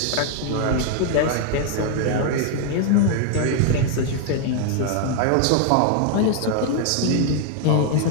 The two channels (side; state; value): both; different; correlation 0.00